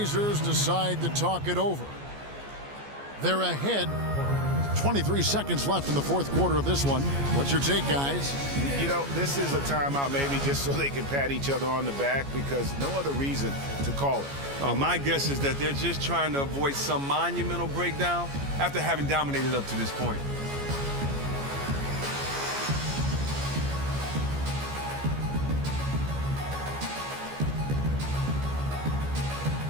decide to talk it over. They're ahead. 23 seconds left in the fourth quarter of this one. What's your take, guys? You know, this is a timeout maybe just so they can pat each other on the back because no other reason to call it. My guess is that they're just trying to avoid some monumental breakdown after having dominated up to this point.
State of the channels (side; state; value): left; late; 14 ms